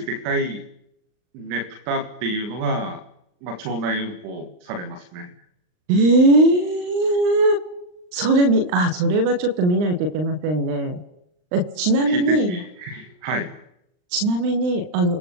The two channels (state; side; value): late; left; 39 ms